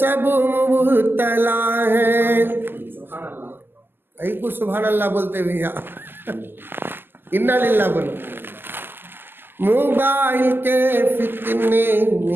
مبتلا ہیں. ای کو سبحان اللہ بولتے ہوئے انا للہ بولو. موبائل کے فتنے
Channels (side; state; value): left; late; 0.097 ms